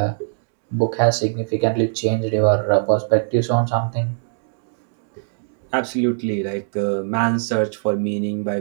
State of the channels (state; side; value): silent; left; digital silence